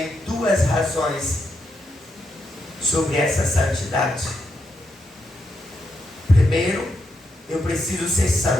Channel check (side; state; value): both; normal; correlation 0.82